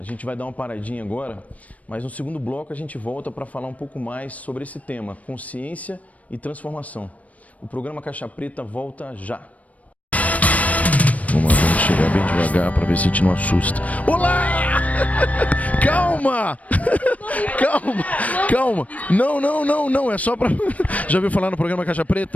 gente vai dar uma paradinha agora, mas no segundo bloco a gente volta para falar um pouco mais sobre esse tema, consciência e transformação. O programa Caixa Preta volta já. Vamos chegar bem devagar para ver se a gente não assusta. Olá! Calma! Calma! Não, é só pra... Já ouviu falar no programa Caixa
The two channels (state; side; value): late; right; 0.068 ms